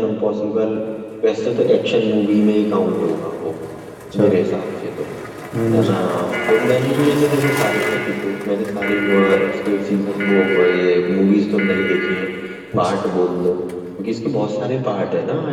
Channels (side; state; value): both; identical; correlation 1.00